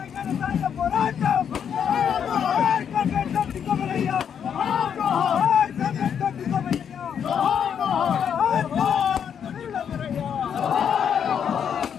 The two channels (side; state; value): right; quieter; 8.0 dB